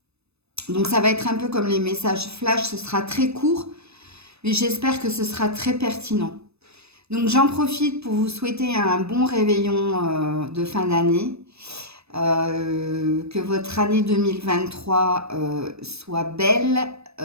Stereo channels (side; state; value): left; late; 0.79 ms